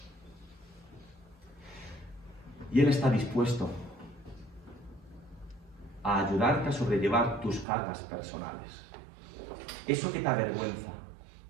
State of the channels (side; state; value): left; drops out; at 7.7 s